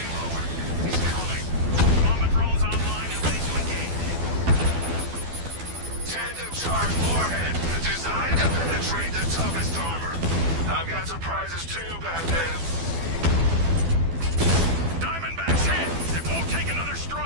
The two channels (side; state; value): left; late; 12 ms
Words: lowered. He's coming. Combat drones online and ready to engage. Tandem charge warhead, designed to penetrate the toughest armor. I've got surprises too, Batman. Diamondback's hit! It won't take another